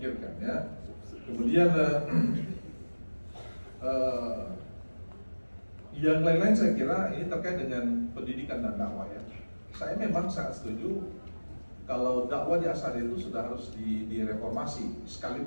ya. Kemudian yang lain-lain saya kira ini terkait dengan pendidikan dan dakwah ya. Saya memang sangat setuju kalau dakwah di Asadiyah itu sudah harus direformasi.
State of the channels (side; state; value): both; inverted; correlation -1.00